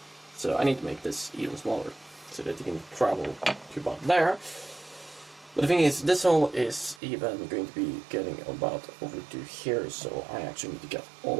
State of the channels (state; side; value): drops out; left; at 7.0 s